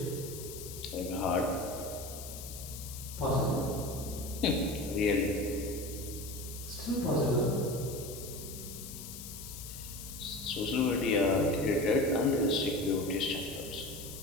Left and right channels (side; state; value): left; noise; hiss, 11 dB below the sound